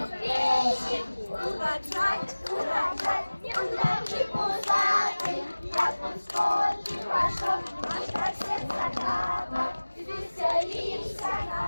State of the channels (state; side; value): inverted; both; correlation -1.00